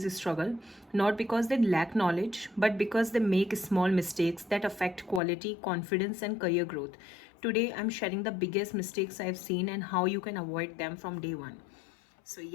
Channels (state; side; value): drops out; right; at 5.2 s